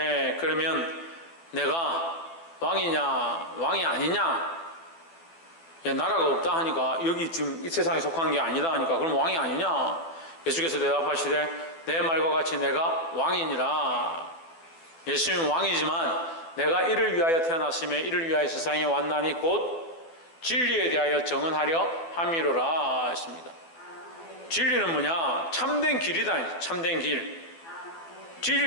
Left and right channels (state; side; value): late; right; 12 ms